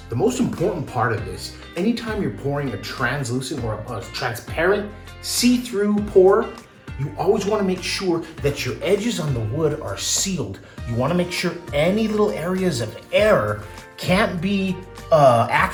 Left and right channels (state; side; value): identical; both; correlation 1.00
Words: the most important part of this, anytime you're pouring a translucent or a transparent see-through pour, you always want to make sure that your edges on the wood are sealed. You want to make sure any little areas of air can't be